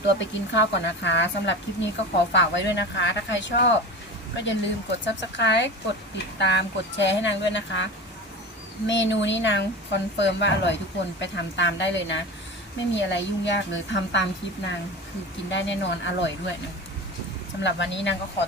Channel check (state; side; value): normal; both; correlation 0.30